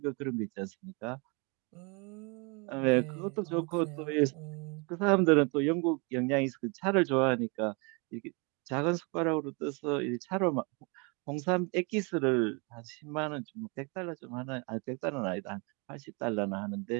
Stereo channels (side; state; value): left; quieter; 32.2 dB